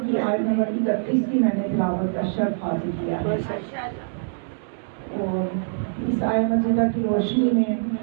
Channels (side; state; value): left; silent; digital silence